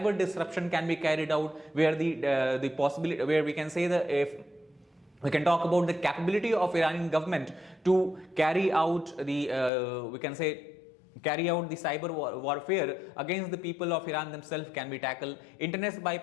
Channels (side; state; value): right; drops out; at 9.7 s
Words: disruption can be carried out, where the possibility, where we can say that if we can talk about the capability of Iranian government to carry out the we can say carry out the cyber warfare against the people of Iran themselves can be tackled. Internet